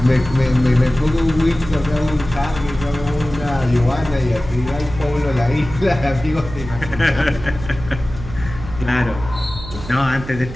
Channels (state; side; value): noise; right; hum, 11 dB below the sound